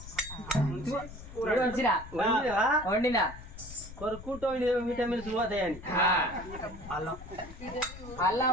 వండిన కొరుకుంటూ విటమిన్స్ పోతాయని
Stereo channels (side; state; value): left; noise; rumble, 14 dB below the sound